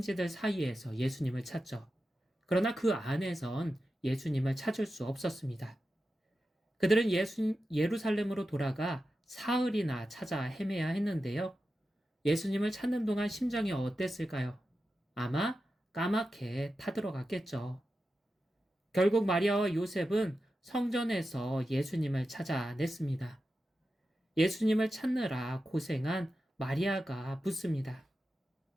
사이에서 예수님을 찾죠. 그러나 그 안에선 예수님을 찾을 수 없었습니다. 그들은 예루살렘으로 돌아가 사흘이나 찾아 헤매야 했는데요. 예수님을 찾는 동안 심정이 어땠을까요? 아마 까맣게 타들어갔겠죠. 결국 마리아와 요셉은 성전에서 예수님을 찾아냈습니다. 예수님을 찾느라 고생한 마리아가 묻습니다.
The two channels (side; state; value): both; normal; correlation 0.91